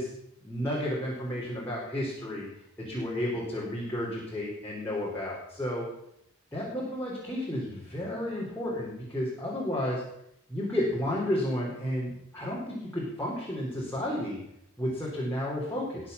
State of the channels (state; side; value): normal; both; correlation 0.65